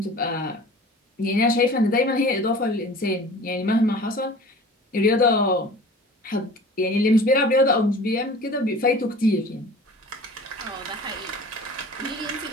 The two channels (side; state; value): both; normal; correlation 0.42